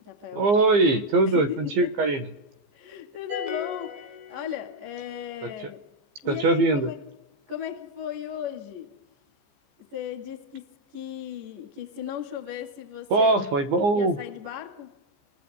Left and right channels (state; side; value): late; left; 15 ms